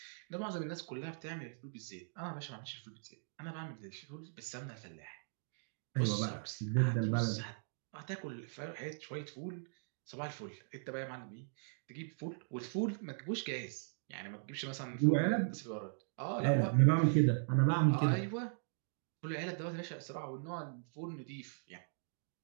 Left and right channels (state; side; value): silent; left; digital silence